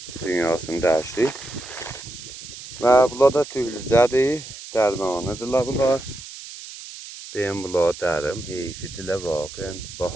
Dünyasını dəyişdi. Və bunlar da tühlücədir, dərmanıdırlar bunlar. Deyim bunlar dərim, heyfidirlər vaqən.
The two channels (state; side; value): noise; right; hiss, 13 dB below the sound